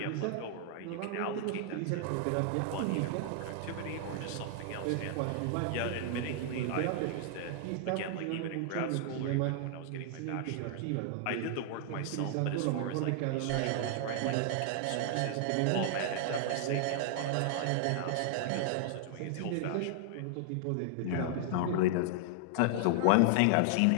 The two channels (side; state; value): both; different; correlation -0.01